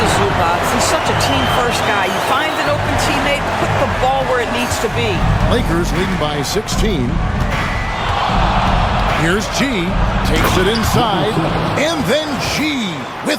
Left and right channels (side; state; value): both; identical; correlation 1.00